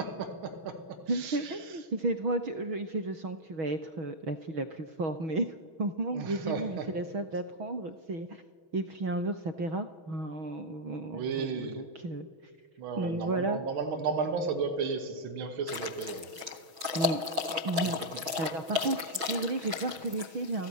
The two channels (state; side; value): late; left; 6.3 ms